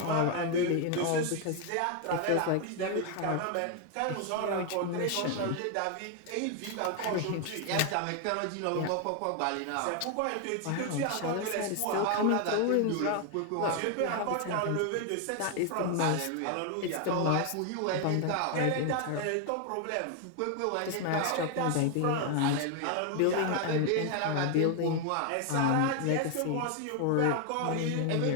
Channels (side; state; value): both; different; correlation 0.01